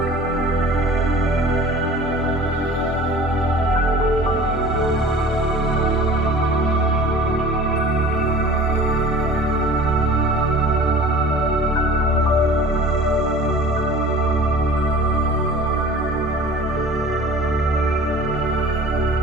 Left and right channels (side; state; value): both; normal; correlation 0.43